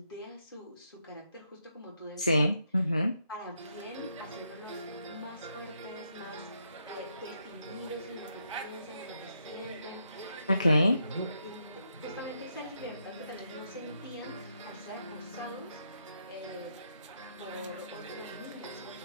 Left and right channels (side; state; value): both; inverted; correlation -0.78